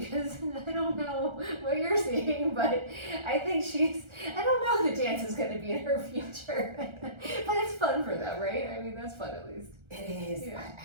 I don't know what you're seeing, but I think I don't know if the dance is going to be in her future, but it's fun for them, right? I mean, that's fun at least. It is. Yeah. I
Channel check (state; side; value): late; left; 1.3 ms